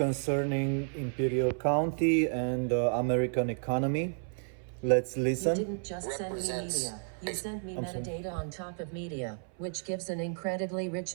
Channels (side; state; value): left; silent; 57 dB below the other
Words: Imperial County and American economy. Let's listen. You didn't just send me media. You sent me metadata on top of media, which gives an incredibly